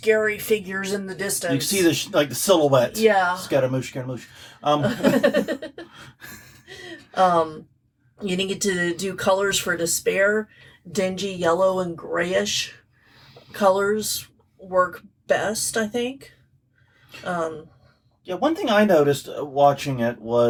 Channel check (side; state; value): both; identical; correlation 1.00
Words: figures in the distance. You can see the silhouette. Yeah. Scaramouche, Scaramouche. You need to do colors for despair. Dingy yellow and grayish colors work best, I think. Yeah, one thing I noticed watching it